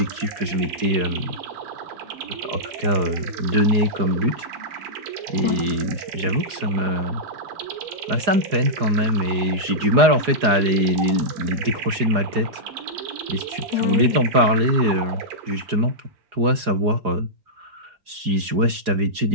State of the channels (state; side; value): late; left; 4.8 ms